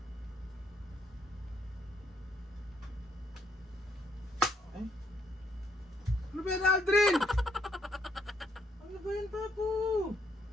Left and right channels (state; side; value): normal; both; correlation 0.72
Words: Ay? Ano ba yan, Aldrin? Ano ba yan, Papo?